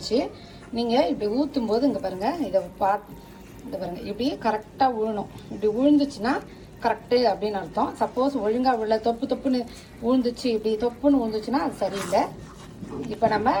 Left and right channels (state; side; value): identical; both; correlation 1.00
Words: நீங்க இப்படி ஊத்தும் போது இங்க பாருங்க, இதை பாருங்க, இப்படி கரெக்டா விழணும். இப்படி விழுந்துச்சுன்னா கரெக்டு அப்படின்னு அர்த்தம். சப்போஸ் ஒழுங்கா விழ தொப்புன்னு விழுந்துச்சு, இப்படி தொப்புன்னு விழுந்துச்சுன்னா அது சரியில்லை. இப்போ நம்ம